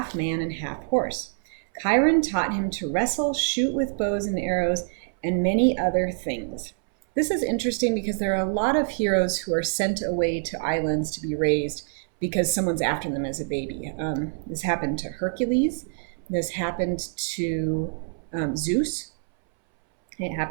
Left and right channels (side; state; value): left; silent; 61 dB below the other